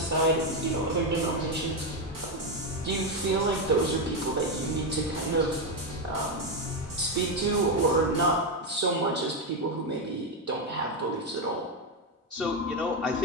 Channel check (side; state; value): both; normal; correlation 0.07